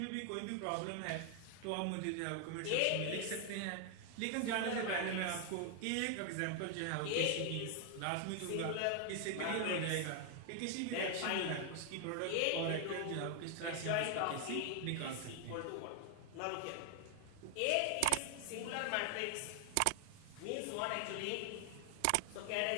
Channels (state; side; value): different; both; correlation 0.00